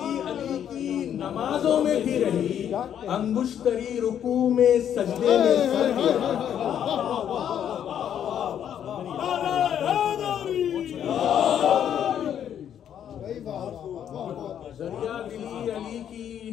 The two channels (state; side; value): quieter; right; 9.5 dB